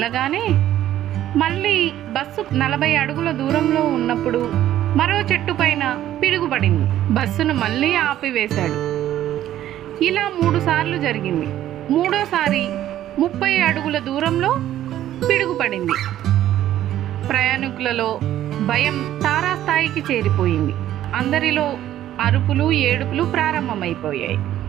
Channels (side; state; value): left; quieter; 12.5 dB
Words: మళ్ళీ బస్సు 40 అడుగుల దూరంలో ఉన్నప్పుడు మరో చెట్టు పైన పిడుగుపడింది. బస్సును మళ్ళీ ఆపివేశాడు. ఇలా 3 సార్లు జరిగింది. మూడోసారి 30 అడుగుల దూరంలో పిడుగుపడింది. ప్రయాణికులలో భయం తారాస్థాయికి చేరిపోయింది. అందరిలో అరుపులు ఏడుపులు ప్రారంభమైపోయాయి.